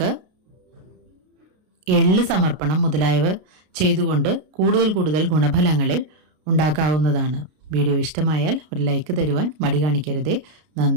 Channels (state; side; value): late; left; 33 ms